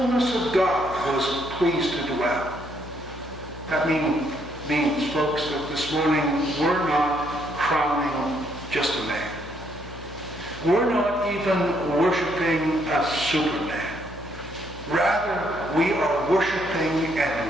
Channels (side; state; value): left; noise; hum, 15 dB below the sound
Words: of God was pleased to dwell. That means, folks, that this morning we're not crowning just a man. We're not even worshiping a Superman. Rather, we are worshiping